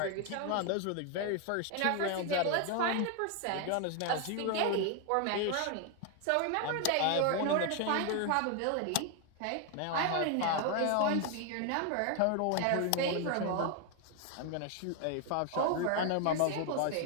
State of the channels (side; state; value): both; different; correlation 0.01